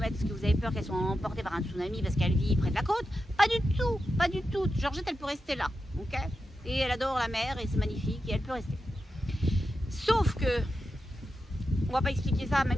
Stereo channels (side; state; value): both; normal; correlation 0.89